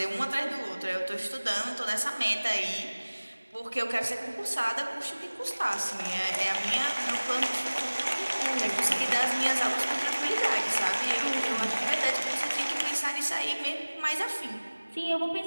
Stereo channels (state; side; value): inverted; both; correlation -1.00